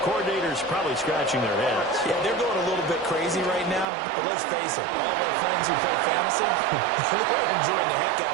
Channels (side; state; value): left; drops out; at 3.9 s